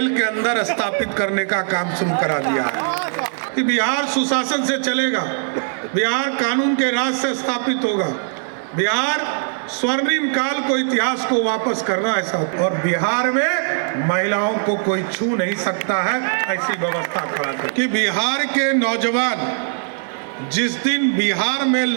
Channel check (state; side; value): silent; left; 61 dB below the other